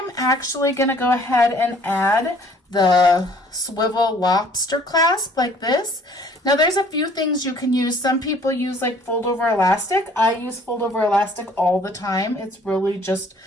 actually going to go ahead and add the swivel lobster clasp like this. Now there's a few things you can use. Some people use like fold over elastic. I use fold over elastic all the time. It's really just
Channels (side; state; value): both; normal; correlation 0.57